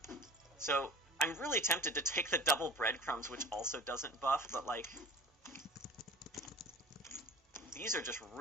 So, I'm really tempted to take the double breadcrumbs, which also doesn't buff, but, like... These are just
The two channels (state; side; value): normal; both; correlation 0.38